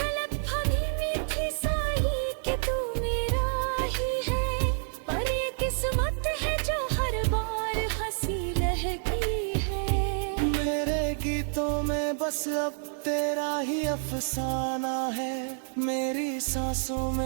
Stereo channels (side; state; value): left; silent; 59 dB below the other